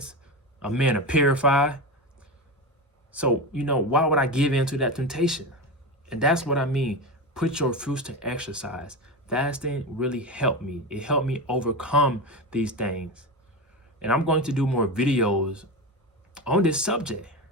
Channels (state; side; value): normal; both; correlation 0.21